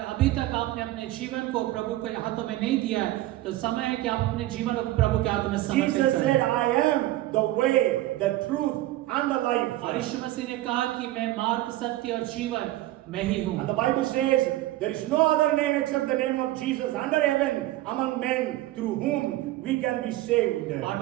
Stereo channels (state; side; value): quieter; left; 16.1 dB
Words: अभी तक आपने अपने जीवन को प्रभु के हाथों में नहीं दिया है तो समय है कि आप अपने जीवन को प्रभु के हाथों में समर्पित Jesus said, करें। I am the way, the truth and the life. और यीशु मसीह ने कहा कि मैं मार्ग, सत्य और जीवन मैं ही हूँ। And the Bible says, there is no other name except the name of Jesus under heaven among men through whom we can be saved. और